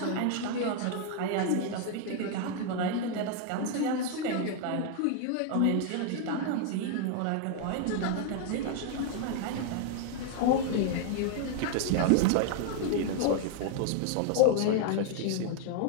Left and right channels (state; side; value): different; both; correlation 0.00